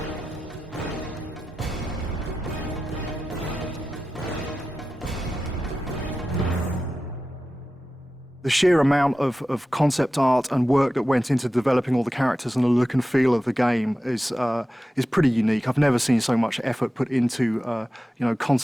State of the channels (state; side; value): normal; both; correlation 0.93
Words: The sheer amount of concept art and work that went into developing all the characters and the look and feel of the game is pretty unique. I've never seen so much effort put into